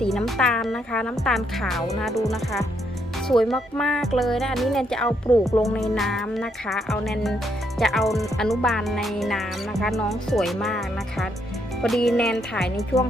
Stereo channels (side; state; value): both; normal; correlation 0.75